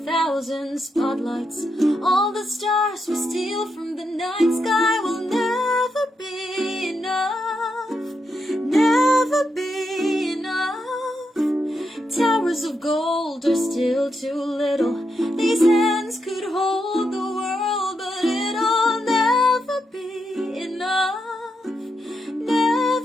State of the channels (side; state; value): both; normal; correlation 0.83